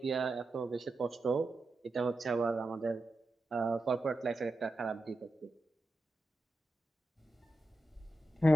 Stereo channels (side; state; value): both; normal; correlation 0.90